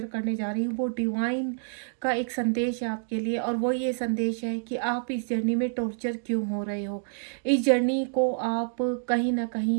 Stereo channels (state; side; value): silent; left; digital silence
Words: करने जा रही हूँ वो डिवाइन का एक संदेश है आपके लिए। और वो ये संदेश है कि आप इस जर्नी में टॉर्चर क्यों हो रहे हो। इस जर्नी को आप कहीं ना